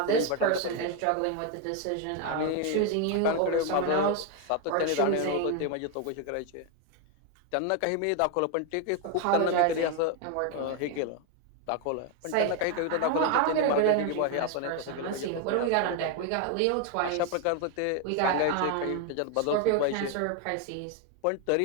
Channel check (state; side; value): different; both; correlation 0.01